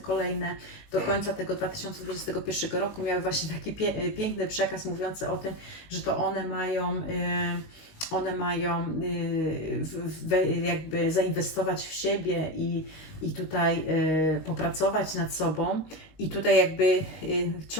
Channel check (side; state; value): right; late; 19 ms